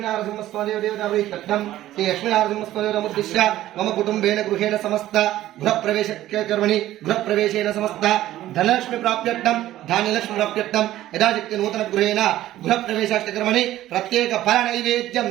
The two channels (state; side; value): quieter; left; 14.2 dB